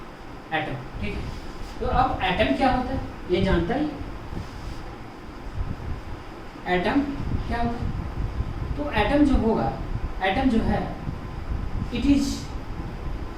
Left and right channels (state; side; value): identical; both; correlation 1.00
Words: atom, ठीक है। तो अब एटम क्या होता है ये जानता ही, एटम क्या होता है। तो एटम जो होगा, एटम जो है, it is